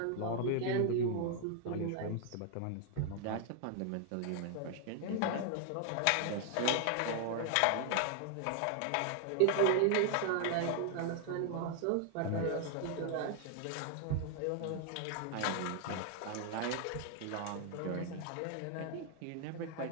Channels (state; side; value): different; both; correlation 0.00